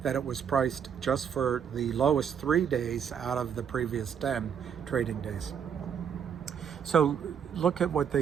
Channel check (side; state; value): left; quieter; 7.8 dB